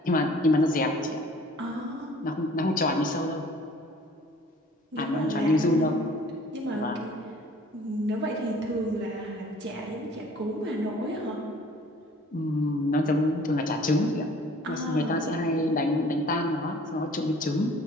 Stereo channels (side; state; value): both; normal; correlation 0.52